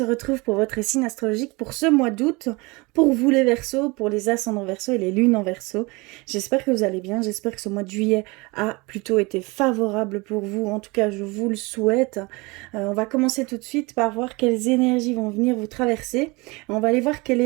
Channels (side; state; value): left; quieter; 25.5 dB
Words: retrouve pour votre signe astrologique pour ce mois d'août, pour vous les Verseaux, pour les ascendants Verseaux et les lunes en Verseau. J'espère que vous allez bien, j'espère que ce mois de juillet a plutôt été favorable pour vous, en tout cas je vous le souhaite. On va commencer tout de suite par voir quelles énergies vont venir vous traverser. On va aller voir quelle